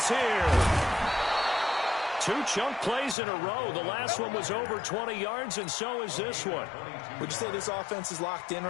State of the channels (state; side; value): drops out; right; at 3.2 s